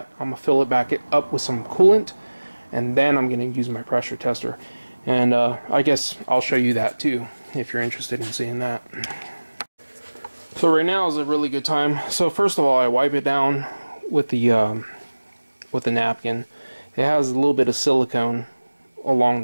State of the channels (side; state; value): both; inverted; correlation -1.00